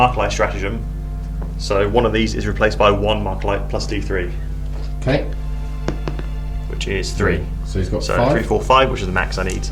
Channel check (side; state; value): both; identical; correlation 1.00